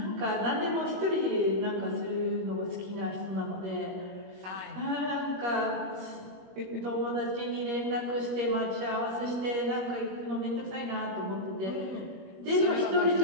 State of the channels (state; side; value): late; left; 21 ms